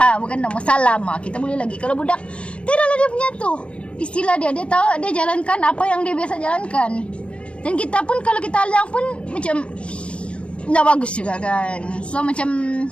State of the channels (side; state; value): right; late; 0.059 ms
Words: bukan nama salam kita boleh lagi. Kalau budak tidaklah dia punya tu istilah dia tahu, dia jalankan apa yang dia biasa jalankan. Dan kita pun kalau kita alang pun macam tak bagus juga kan. So macam